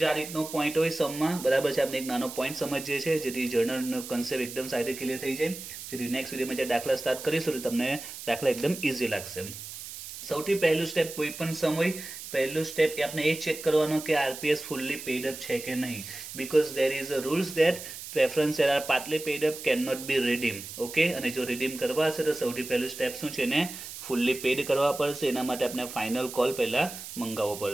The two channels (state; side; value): noise; right; hiss, 11 dB below the sound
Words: જે આ રીતનો પોઈન્ટ હોય સમમાં, બરાબર છે, આપણે એક નાનો પોઈન્ટ સમજીએ છીએ જેથી જર્નલનો કન્સેપ્ટ એકદમ સારી રીતે ક્લિયર થઈ જાય. જેથી નેક્સ્ટ વિડીયોમાં જે દાખલા સ્ટાર્ટ કરીશું તો તમને દાખલા એકદમ ઇઝી લાગશે. સૌથી પહેલું સ્ટેપ કોઈ પણ સમ હોય, પહેલું સ્ટેપ એ આપણે એ ચેક કરવાનો કે આરપીએસ ફુલ્લી પેડ અપ છે કે નહીં. Because there is a rules that preference share are partly paid up, can not be redeem. Okay, અને જો રીડીમ કરવા હશે તો સૌથી પહેલું સ્ટેપ શું છે, એને ફુલ્લી પેડ કરવા પડશે. એના માટે આપણે ફાઇનલ કોલ પહેલા મંગાવવો